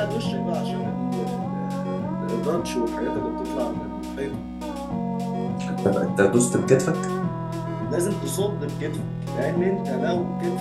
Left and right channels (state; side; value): identical; both; correlation 1.00